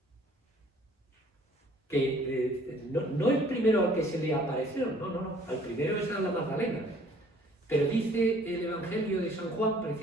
Que no el primero al que se le apareció, no, al primero es a la Magdalena. Pero dice el Evangelio de San Juan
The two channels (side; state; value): both; normal; correlation 0.57